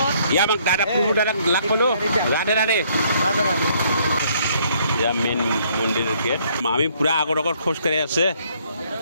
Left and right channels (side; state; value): both; inverted; correlation -0.66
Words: ইয়াত আমাক দাদা প্ৰভু দাদাক লাগ পালোঁ। ৰাধে ৰাধে। ইয়াৰ মেইন মন্দিৰ গেট। আমি পূৰা আগত খোজকাঢ়ি আছে